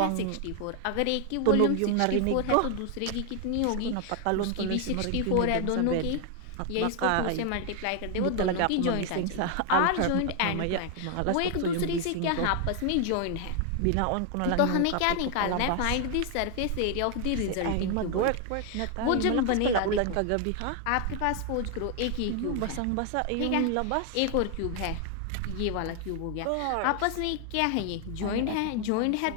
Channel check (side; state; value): both; different; correlation 0.00